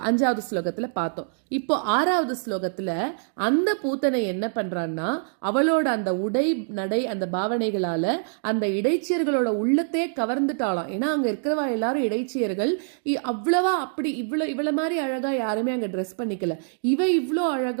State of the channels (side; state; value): left; silent; digital silence